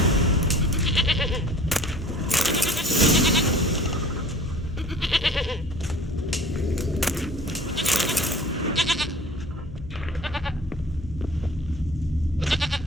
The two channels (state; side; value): noise; left; hum, 13 dB below the sound